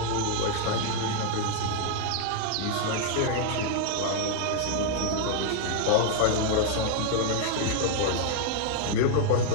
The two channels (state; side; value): different; both; correlation 0.00